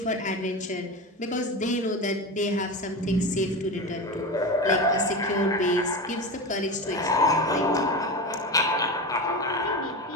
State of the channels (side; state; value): both; normal; correlation 0.23